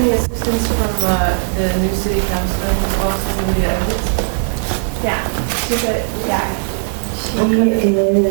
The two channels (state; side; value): silent; left; 68 dB below the other